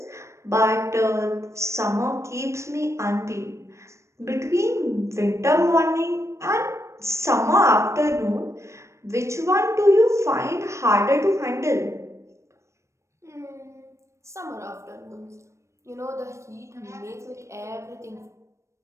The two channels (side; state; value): left; late; 0.14 ms